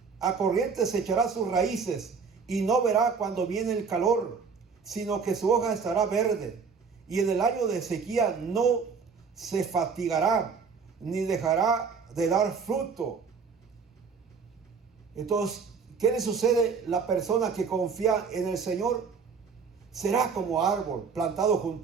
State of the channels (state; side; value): quieter; left; 5.5 dB